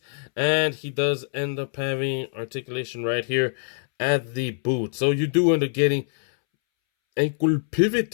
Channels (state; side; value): silent; right; 62 dB below the other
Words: And he does end up having articulation right here at the boot. So you do end up getting ankle